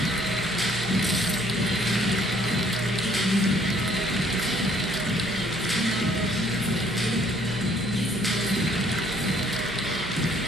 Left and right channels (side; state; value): right; noise; hum, 14 dB below the sound